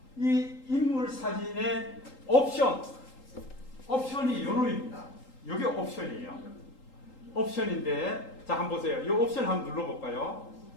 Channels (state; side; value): late; right; 3.8 ms